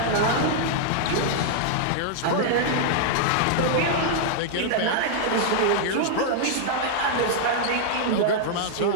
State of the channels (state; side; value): different; both; correlation -0.01